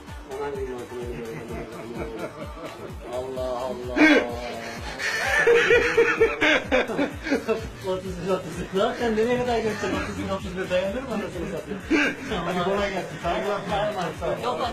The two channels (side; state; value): both; identical; correlation 1.00